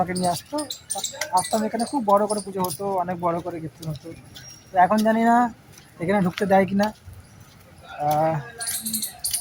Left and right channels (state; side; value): identical; both; correlation 1.00